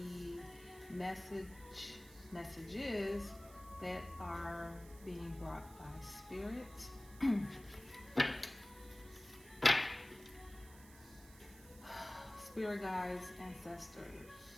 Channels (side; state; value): right; noise; hiss, 20 dB below the sound